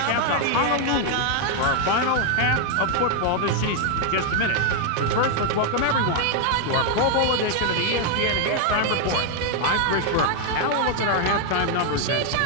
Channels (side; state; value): both; different; correlation 0.00